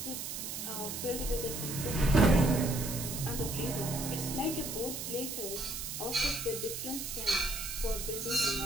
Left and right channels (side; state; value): right; noise; hiss, 5 dB below the sound